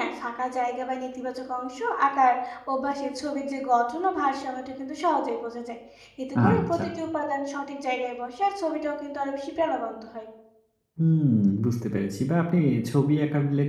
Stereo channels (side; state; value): both; identical; correlation 1.00